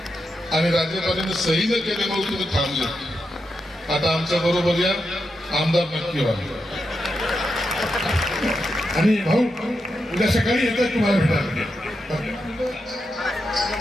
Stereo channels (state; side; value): normal; both; correlation 0.86